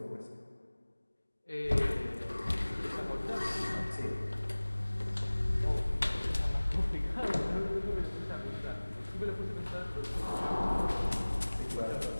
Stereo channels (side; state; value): both; inverted; correlation -1.00